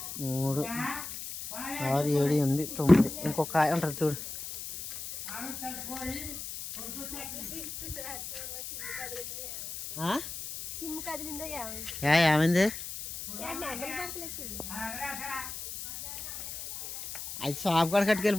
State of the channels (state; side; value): noise; left; hiss, 8 dB below the sound